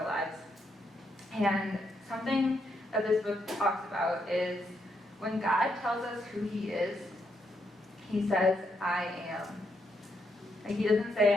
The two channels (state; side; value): normal; both; correlation 0.78